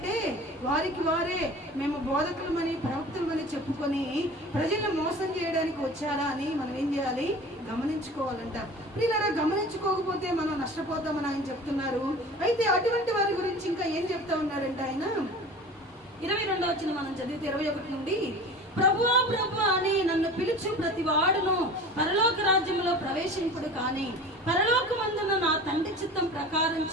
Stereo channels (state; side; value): normal; both; correlation 0.38